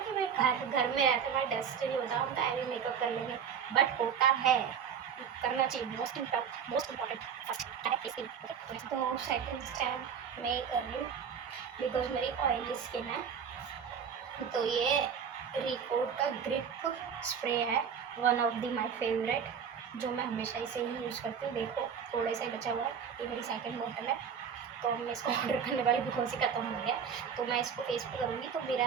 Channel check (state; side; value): quieter; left; 7.3 dB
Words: मैं घर घर में रहते मैं डस्ट नहीं होता, हम टाइम भी मेकअप कर लेंगे, बट होता है, करना चाहिए। मोस्ट इम्पॉर्टेंट फर्स्ट है फेस क्रीम। तो सेकंड स्टेप मैं कर रही हूँ बिकॉज मेरी ऑयली स्किन है, तो ये रिकोड का ग्रिप स्प्रे है, one of the my favourite, जो मैं हमेशा इसे ही यूज़ करती हूँ। देखो थोड़ा सा ही बचा हुआ है, ये मेरी सेकंड बॉटल है, तो मैं इसको ऑर्डर करने वाली बिकॉज ही ख़त्म हो गया। तो मैं इसको फेस पे करूँगी तो